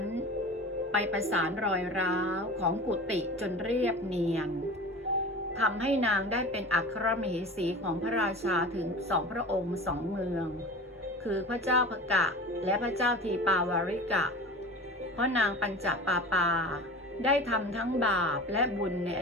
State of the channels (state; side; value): normal; both; correlation 0.34